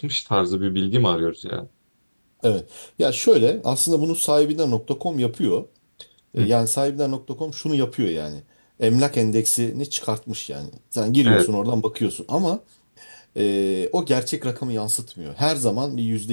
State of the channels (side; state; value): both; inverted; correlation -1.00